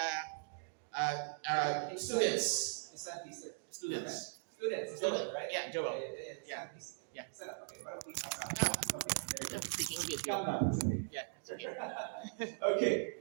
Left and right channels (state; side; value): silent; left; digital silence